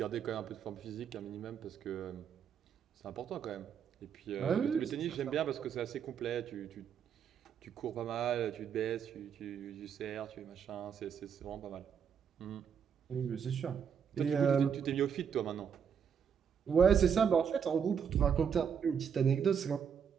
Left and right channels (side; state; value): left; quieter; 7.4 dB